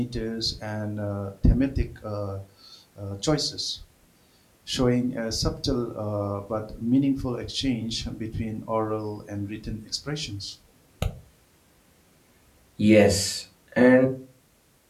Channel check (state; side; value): identical; both; correlation 1.00